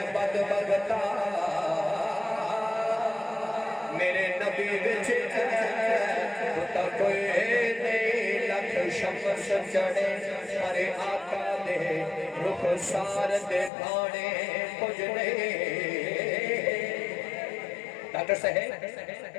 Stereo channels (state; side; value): drops out; right; at 13.7 s